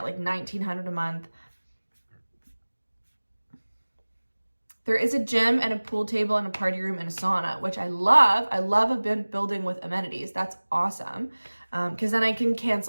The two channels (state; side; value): inverted; both; correlation -1.00